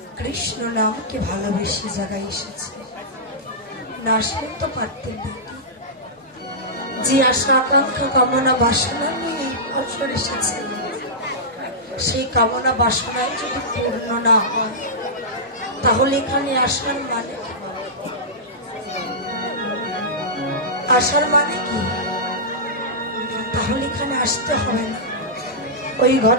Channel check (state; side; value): normal; both; correlation -0.13